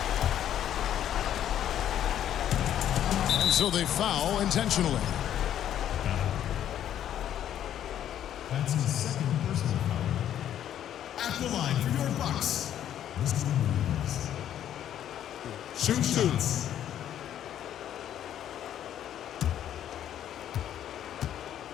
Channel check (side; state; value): right; quieter; 10.7 dB